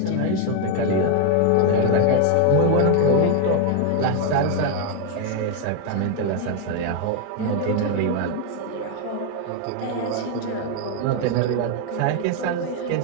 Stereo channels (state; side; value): different; both; correlation 0.00